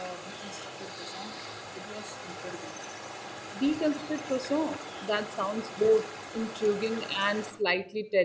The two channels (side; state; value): both; identical; correlation 1.00